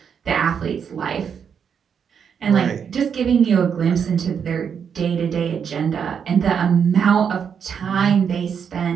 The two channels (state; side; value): quieter; left; 7.2 dB